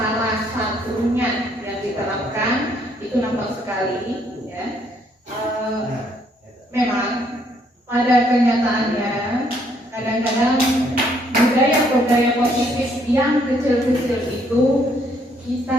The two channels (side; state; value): both; normal; correlation 0.68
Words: satunya yang diterapkan itu nampak sekali. Ya, memang pada kenyataannya kadang-kadang budaya-budaya positif yang kecil-kecil itu